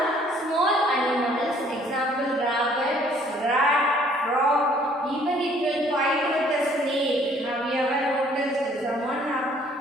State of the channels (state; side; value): normal; both; correlation 0.60